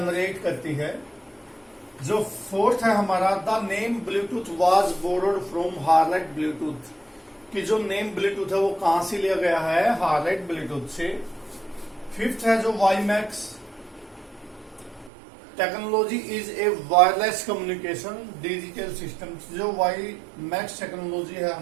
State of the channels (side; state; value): left; drops out; at 15.1 s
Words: करती है। जो फोर्थ है हमारा, the name Bluetooth was borrowed from harlot Bluetooth, कि जो नेम ब्लूटूथ है वो कहां से लिया गया है, हार्लेट ब्लूटूथ से। फिफ्थ है जो WiMAX technology is a wireless communication digital system, जो वाईमैक्स टेक्नोलॉजी है